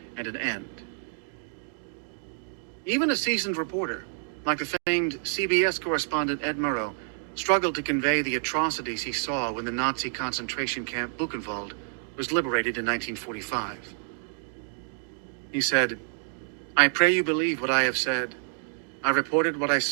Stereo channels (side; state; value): left; silent; 59 dB below the other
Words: and an end. Even a seasoned reporter, like the famed CBS correspondent Ed Murrow, struggled to convey the atrocities he saw when the Nazi concentration camp Buchenwald was liberated in 1945. He said, "I pray you believe what I have said. I reported what I